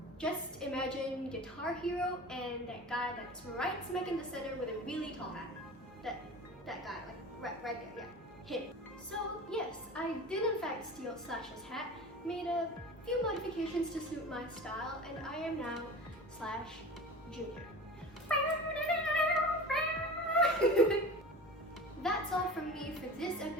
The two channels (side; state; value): both; normal; correlation 0.35